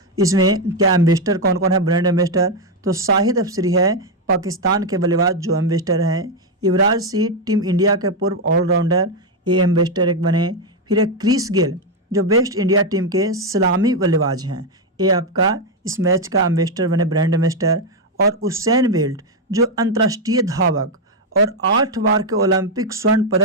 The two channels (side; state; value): both; normal; correlation 0.03